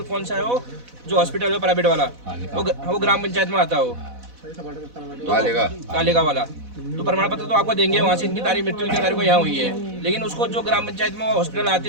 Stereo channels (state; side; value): late; left; 4.1 ms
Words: कौन सा है, वो जो हॉस्पिटल है प्राइवेट वाला, वो ग्राम पंचायत में आता है, वो कालेगा वाला। तो प्रमाण पत्र तो आपको देंगे, वहाँ से इनकी तारीख मृत्यु की तारीख को यहाँ हुई है, लेकिन उसको जो ग्राम पंचायत में हॉस्पिटल आते